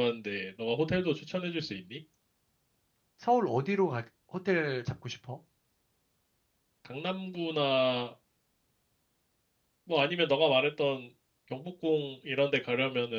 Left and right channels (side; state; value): both; identical; correlation 1.00